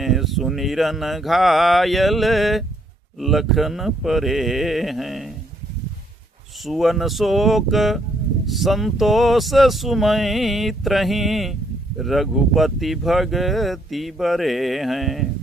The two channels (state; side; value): normal; both; correlation 0.70